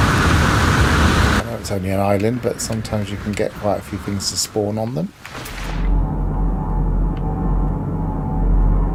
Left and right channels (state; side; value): identical; both; correlation 1.00